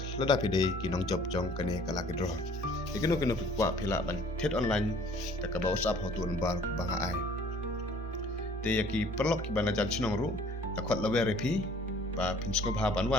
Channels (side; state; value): both; normal; correlation 0.54